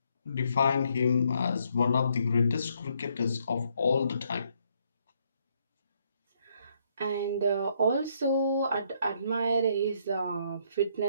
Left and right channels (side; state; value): both; inverted; correlation -0.71